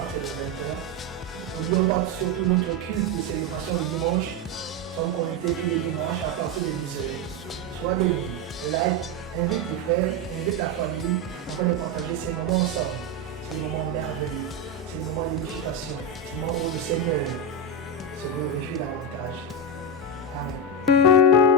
de 20h. N'oublions pas surtout notre culte de célébration le dimanche. Nous sommes connectés tous les dimanches à partir de 10h. Sois béni, like, invite tes frères, invite ta famille afin de partager ces moments ensemble. Ces moments merveilleux, ces moments d'édification, ces moments où le Seigneur se glorifie davantage. Amen.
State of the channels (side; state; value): both; normal; correlation 0.10